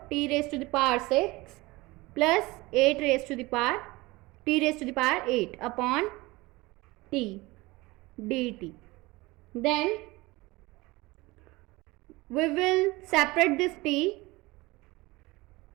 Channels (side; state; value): left; quieter; 21.8 dB